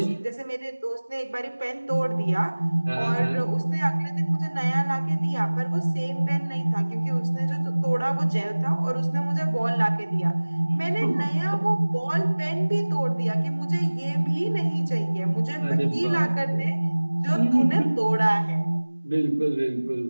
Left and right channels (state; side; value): inverted; both; correlation -1.00